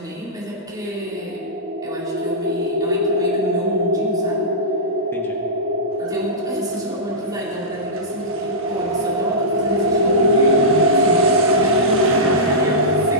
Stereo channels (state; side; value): normal; both; correlation -0.15